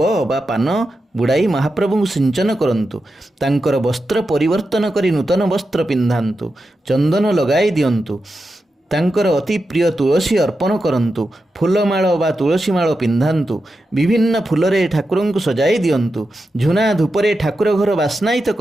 अबा पान बुड़ाई महाप्रभु सिंचन करंतु। तांकर वस्त्र परिवर्तन करी नूतन वस्त्र पिंधांतु। चंदन लगाई दियंतु। तांकर अति प्रिय तुलसी अर्पण करंतु। फूलमाଳ बा तुलसी माଳ पिंधांतु। विभिन्न फूलरे ठाकुर को सजाई दियंतु। झुना धूपरे ठाकुर घर बास्नायित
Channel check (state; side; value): normal; both; correlation 0.89